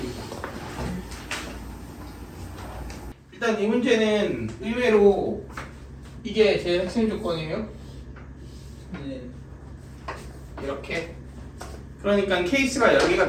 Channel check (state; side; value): identical; both; correlation 1.00